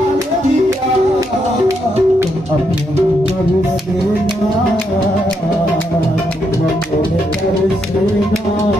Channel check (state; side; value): normal; both; correlation 0.79